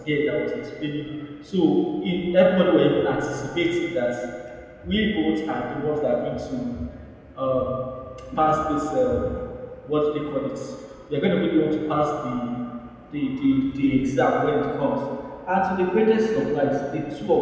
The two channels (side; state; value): both; identical; correlation 1.00